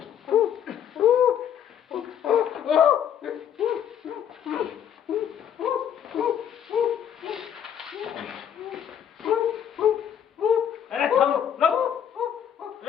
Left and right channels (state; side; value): quieter; right; 9.1 dB